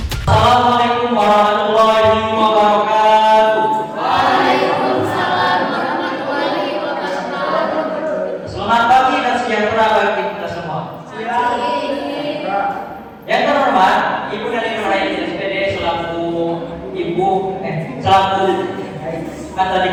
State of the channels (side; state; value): both; identical; correlation 1.00